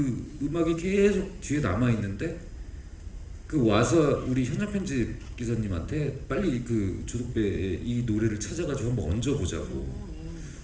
음악이 계속 뒤에 남아 있는데 그 와서 우리 현장 편집 기사님한테 빨리 그 조덕배의 이 노래를 찾아가지고 한번 얹어보자고.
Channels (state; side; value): identical; both; correlation 1.00